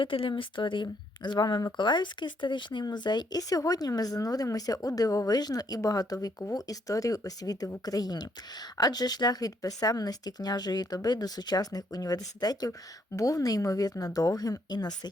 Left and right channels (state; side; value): normal; both; correlation 0.71